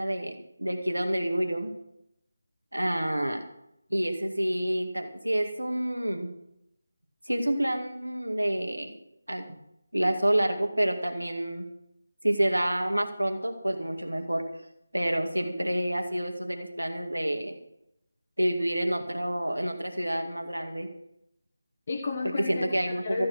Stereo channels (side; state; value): both; inverted; correlation -0.97